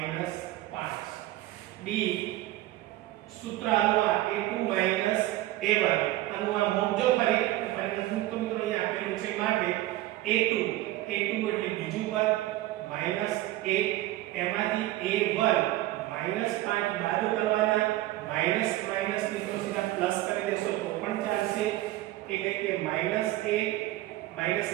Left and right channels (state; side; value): quieter; left; 16.3 dB